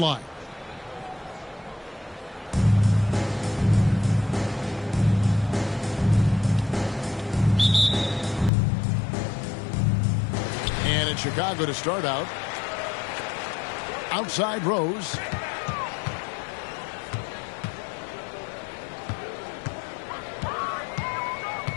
And in Chicago to start out. Outside Rose.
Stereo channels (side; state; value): right; drops out; at 8.5 s